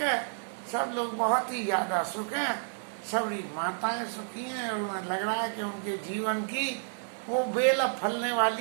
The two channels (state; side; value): silent; left; 58 dB below the other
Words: सब लोग बहुत ही ज्यादा सुख हैं, सभी माताएं सुखी हैं और उन्हें लग रहा है कि उनके जीवन की वो बेल फलने